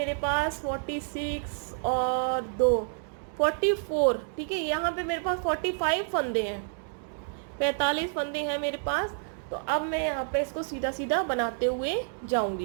पास 46 और 2 44, ठीक है। यहाँ पे मेरे पास 45 फंदे हैं, 45 फंदे हैं मेरे पास। तो अब मैं यहाँ पे इसको सीधा सीधा बनाते हुए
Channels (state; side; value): silent; left; 59 dB below the other